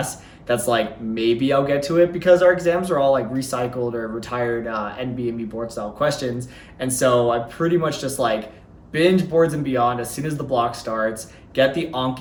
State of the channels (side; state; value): both; identical; correlation 1.00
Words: That's maybe I'll get to it, because our exams are all recycled or retired NBME board style questions, and so I pretty much just binge Boards and Beyond as soon as the block starts, get the